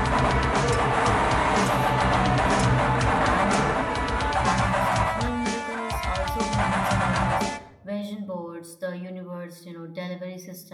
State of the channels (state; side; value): identical; both; correlation 1.00